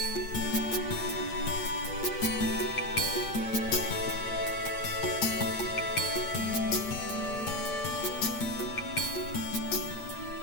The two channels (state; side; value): late; right; 8.6 ms